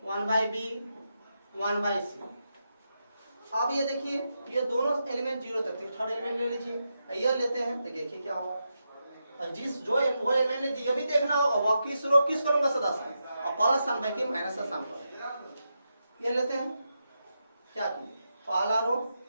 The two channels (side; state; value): both; inverted; correlation -0.86